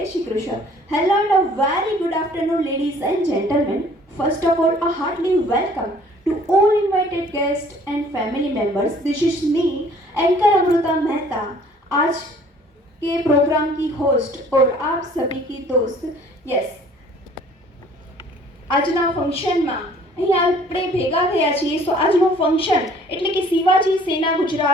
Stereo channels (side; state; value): both; normal; correlation 0.55